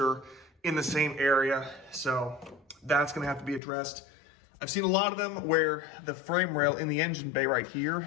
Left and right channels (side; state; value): right; drops out; at 3.6 s